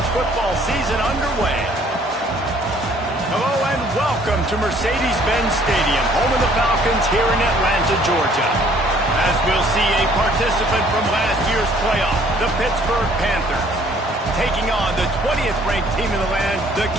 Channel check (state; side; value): normal; both; correlation 0.59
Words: football season underway. Hello and welcome to Mercedes-Benz Stadium, home of the Falcons here in Atlanta, Georgia. As we'll see a participant from last year's playoff, the Pittsburgh Panthers, taking on the 20th ranked team in the land, the